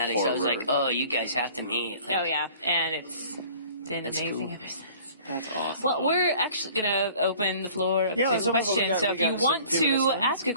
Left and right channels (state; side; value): inverted; both; correlation -0.50